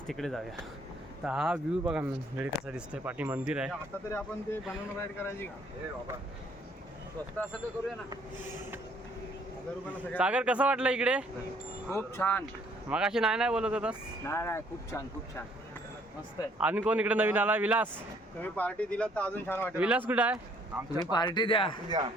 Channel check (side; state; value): both; normal; correlation 0.63